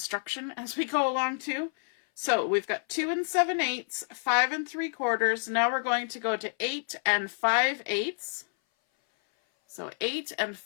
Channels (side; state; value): right; silent; 57 dB below the other